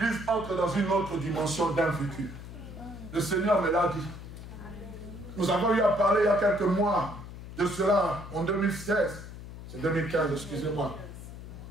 entre dans une autre dimension d'un vécu. Le Seigneur me l'a dit. Nous avons eu à parler il y a quelques mois de cela, en 2016. C'est 2015, excusez-moi.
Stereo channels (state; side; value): noise; left; hum, 12 dB below the sound